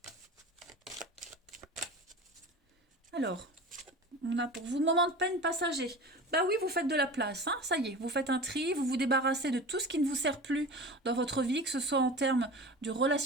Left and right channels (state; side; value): normal; both; correlation 0.34